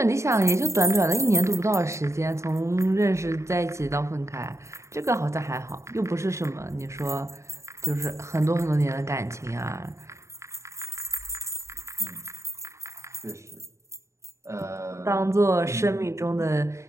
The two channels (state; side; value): late; left; 0.14 ms